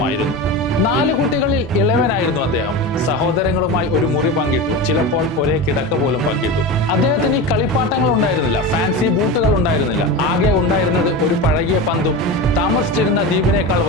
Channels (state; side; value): normal; both; correlation 0.24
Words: 4 കുട്ടികളിൽ ഇളവനായിരുന്നു അദ്ദേഹം. സഹോദരങ്ങളുമായി ഒരു മുറി പങ്കിട്ടു, ചിലപ്പോൾ ഒരേ കിടക്ക പോലും പങ്കിട്ടു. അദ്ദേഹത്തിന് ഈ കളിപ്പാട്ടങ്ങൾ ഉണ്ടായിരുന്നില്ല, ഫാൻസി ബൂട്ടുകൾ ഉണ്ടായിരുന്നില്ല. ആകെ ഉണ്ടായിരുന്നത് ഒരു പഴകിയ പന്തും താമസിച്ചിരുന്ന ദ്വീപിനേക്കാൾ